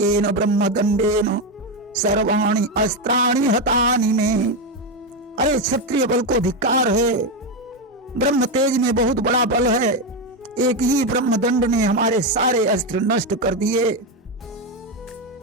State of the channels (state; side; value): normal; both; correlation 0.10